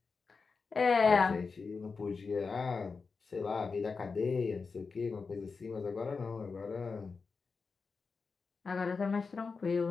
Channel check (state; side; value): quieter; right; 4.7 dB